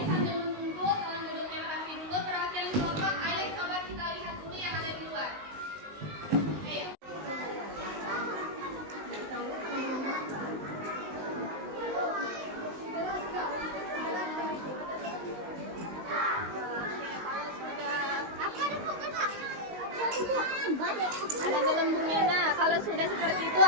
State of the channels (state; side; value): late; left; 19 ms